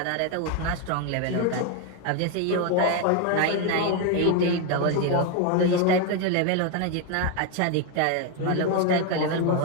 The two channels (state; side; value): different; both; correlation 0.01